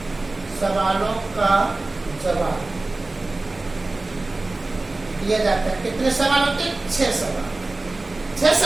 सवालों का जवाब दिया जाता है। कितने सवाल होते हैं? 6 सवाल। 6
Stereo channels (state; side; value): quieter; left; 3.1 dB